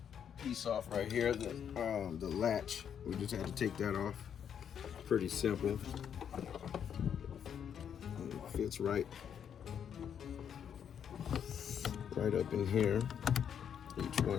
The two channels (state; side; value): quieter; right; 8.4 dB